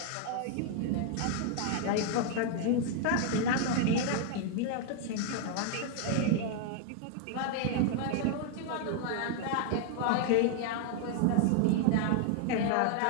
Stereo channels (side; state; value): both; different; correlation 0.00